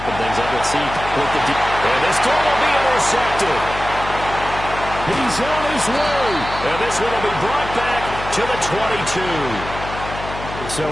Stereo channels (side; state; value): left; noise; hum, 10 dB below the sound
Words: things up. Let's see what the and this throw will be intercepted. He's on his way. And this one will be brought back to the 22. So